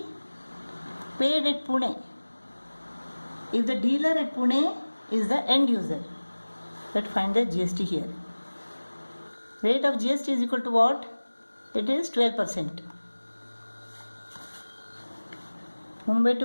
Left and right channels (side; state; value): both; inverted; correlation -1.00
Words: paid at Pune. If the dealer at Pune is the end user, let's find the GST here. Rate of GST is equal to what? It is 12%. Mumbai